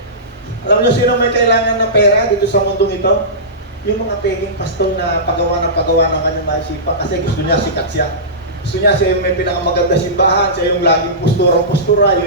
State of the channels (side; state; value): both; normal; correlation -0.20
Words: Alam niyo sino may kailangan ng pera dito sa mundong ito? Yung mga peking pastor na pagawa ng kanyang maisipan kasi gusto niya sikat siya. Gusto niya siya yung may pinakamaganda simbahan, siya yung laging postura,